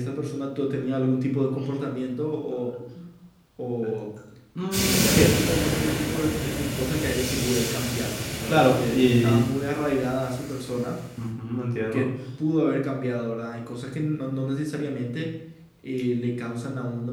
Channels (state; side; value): identical; both; correlation 1.00